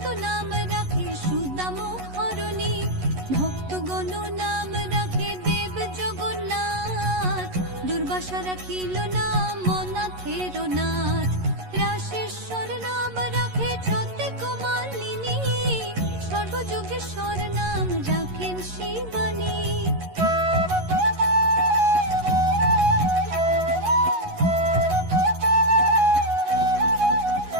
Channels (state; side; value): late; left; 11 ms